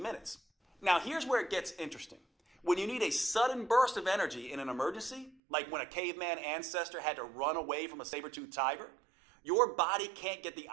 minutes. Now here's where it gets interesting. When you need a sudden burst of energy in an emergency, like when a caveman ancestor had to run away from a saber-toothed tiger, your body can't get the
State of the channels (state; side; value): drops out; left; at 5.4 s